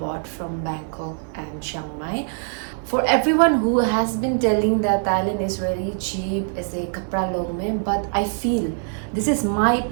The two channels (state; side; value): silent; left; 63 dB below the other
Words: from Bangkok and Chiang Mai. For everyone who has been telling that Thailand is very cheap ऐसे कपड़ा लोग में, but I feel this is my